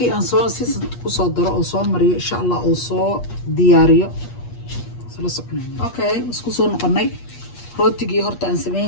aan soo ku soo daro oo soo mariyo insha Allah oo soo diyaariyo sala soconayna okay isku soo noqonay rootigii horta aan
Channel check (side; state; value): right; late; 8.4 ms